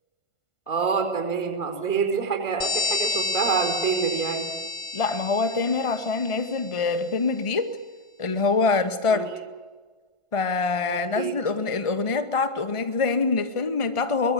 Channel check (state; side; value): late; right; 1.5 ms